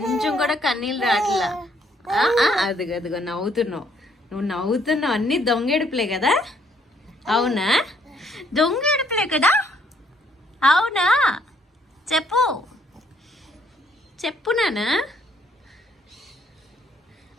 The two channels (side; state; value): both; normal; correlation 0.67